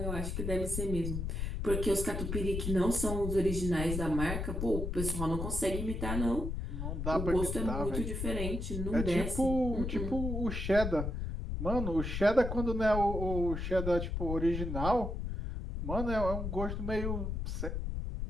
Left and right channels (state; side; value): noise; left; rumble, 3 dB below the sound